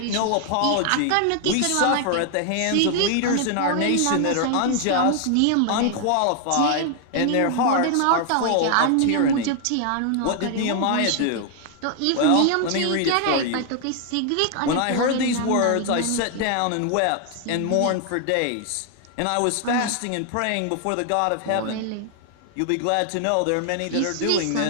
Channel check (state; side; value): different; both; correlation 0.00